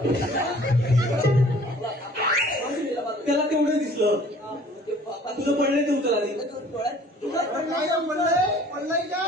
त्याला तेवढं दिसलं तुझं पडलंय ते उचल आधी तुला काय पडलंय पडलंय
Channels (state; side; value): normal; both; correlation 0.52